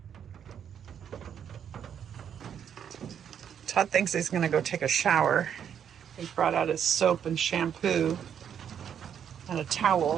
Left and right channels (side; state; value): left; quieter; 8.5 dB